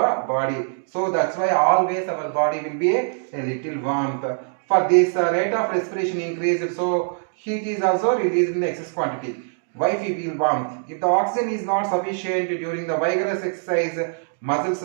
body. So that's why always our body will be a little warmth. For this rate of respiration increased, so heat is also released in the excess quantity. Why we feel warmth? If the oxygen is not sufficient during the vigorous exercise, muscles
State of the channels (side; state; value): left; silent; digital silence